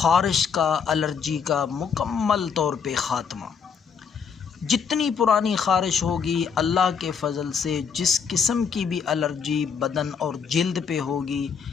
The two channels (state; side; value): quieter; right; 6.4 dB